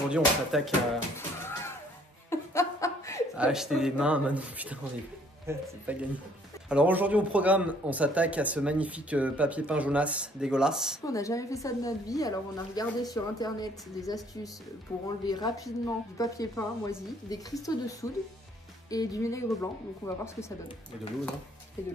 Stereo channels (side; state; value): both; normal; correlation 0.61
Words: on s'attaque à acheter des mains. Maintenant, putain, c'est pas gagné. Alors aujourd'hui au programme, on s'attaque à ce magnifique papier peint jaunasse dégueulasse. On n'a jamais fait ça de notre vie, alors on a regardé sur internet des astuces pour enlever rapidement du papier peint moisi, des cristaux de soude et du vinaigre blanc. Donc on va voir ce que ça donne. Et de l'eau, non? Et de